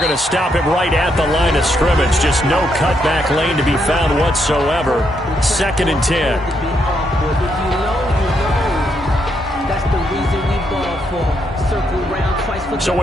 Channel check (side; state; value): both; normal; correlation 0.77